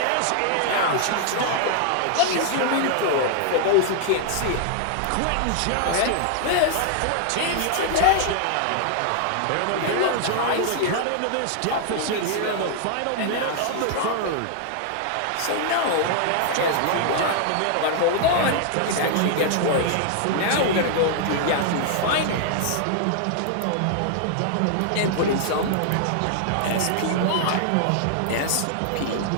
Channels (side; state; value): both; different; correlation 0.00